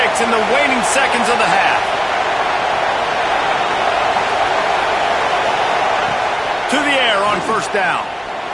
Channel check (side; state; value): both; identical; correlation 1.00